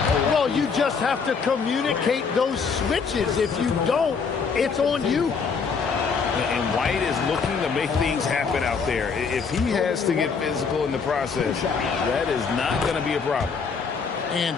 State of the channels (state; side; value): quieter; right; 5.5 dB